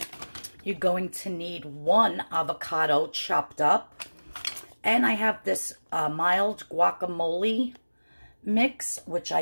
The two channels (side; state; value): both; inverted; correlation -1.00